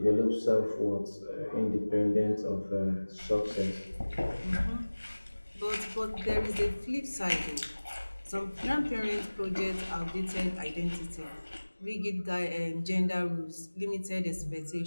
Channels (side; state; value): both; inverted; correlation -1.00